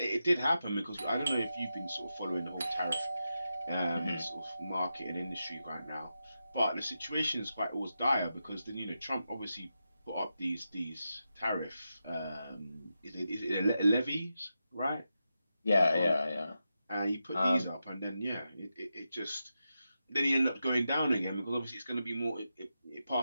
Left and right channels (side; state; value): both; inverted; correlation -0.89